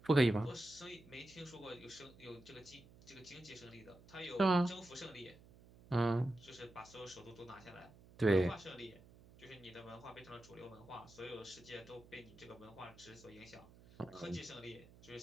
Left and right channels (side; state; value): right; noise; hum, 22 dB below the sound